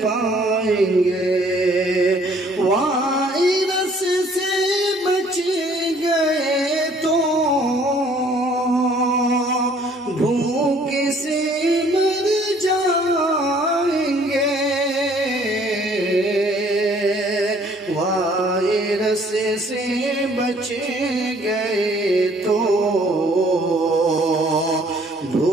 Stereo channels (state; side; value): normal; both; correlation 0.59